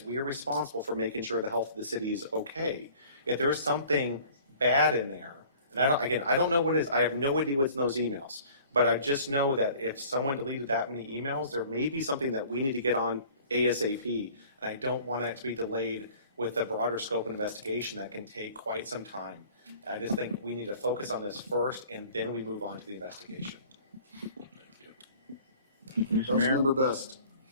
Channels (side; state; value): both; inverted; correlation -0.49